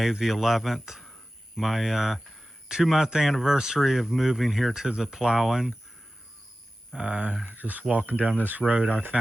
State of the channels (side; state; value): both; normal; correlation 0.95